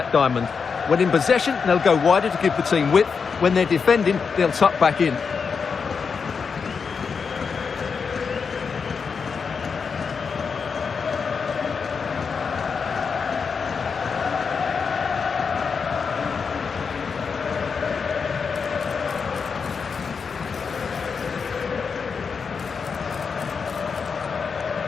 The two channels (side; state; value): right; quieter; 5.7 dB